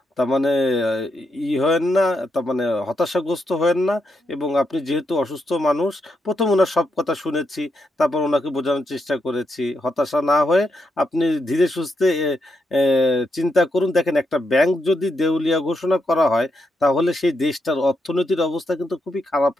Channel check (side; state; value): both; normal; correlation 0.82